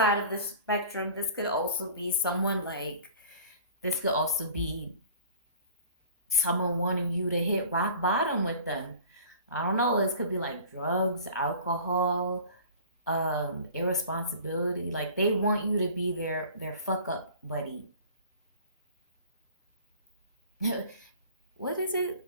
of the spectrum, this could also be someone like, this could also be someone wanting you to hit rock bottom with them. I don't know, this could be like drugs, alcohol, irresponsibility. Like they want you to be their fuck up buddy. What is it?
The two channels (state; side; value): inverted; both; correlation -0.45